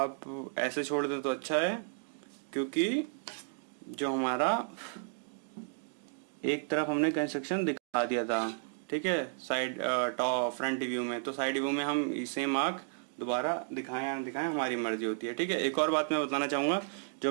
ऐसे छोड़ दें तो अच्छा है, क्योंकि जो हमारा एक तरफ हमने कंस्ट्रक्शन दिखा दिया था। ठीक है, साइड टॉप फ्रंट व्यू में, तो साइड व्यू में हम सेम आर्क दोबारा दिखाएं या ना दिखाएं हमारी मर्जी होती है। ठीक है, एक और बात मैं बताना चाहूँगा, जो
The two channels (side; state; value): left; silent; digital silence